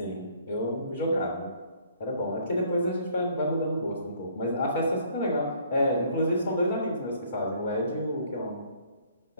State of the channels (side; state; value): both; inverted; correlation -0.61